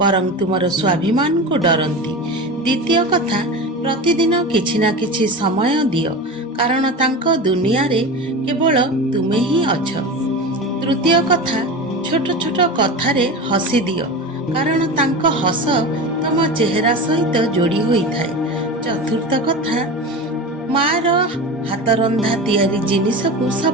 ବରଂ ତୁମର ସ୍ୱାଭିମାନକୁ ଡରନ୍ତି। ଦ୍ୱିତୀୟ କଥା, ପ୍ରତିଦିନ କିଛି ନା କିଛି ସମୟ ଦିଅ, କାରଣ ତାଙ୍କ ଦୁନିଆରେ କେବଳ ତୁମେ ହିଁ ଅଛ। ତୃତୀୟ କଥା, ଛୋଟ ଛୋଟ କଥାରେ ହସି ଦିଅ, କାରଣ ତାଙ୍କ ହସ ତମ ଚେହେରା ସହିତ ଯୋଡ଼ି ହୋଇଥାଏ। ଚତୁର୍ଥ କଥା, ମାର ହାତରନ୍ଧା ତିଆରି ଜିନିଷକୁ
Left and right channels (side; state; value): both; normal; correlation 0.27